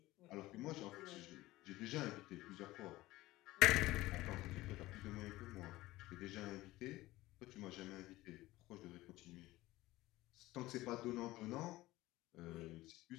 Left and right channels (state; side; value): quieter; right; 17.9 dB